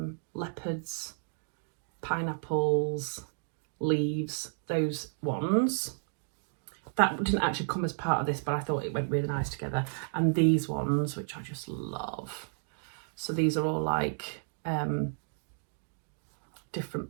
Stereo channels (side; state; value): left; silent; digital silence